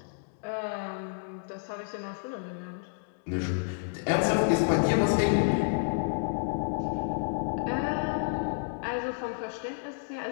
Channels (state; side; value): silent; right; digital silence